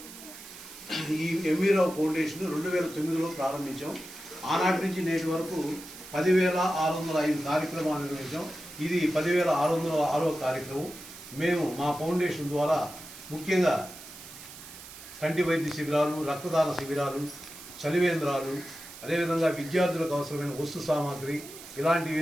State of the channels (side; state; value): right; noise; hiss, 15 dB below the sound